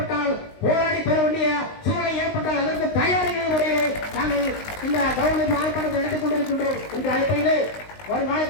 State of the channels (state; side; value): late; right; 19 ms